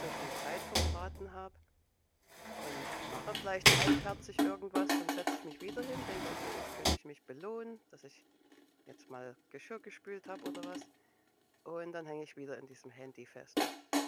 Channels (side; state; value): both; identical; correlation 1.00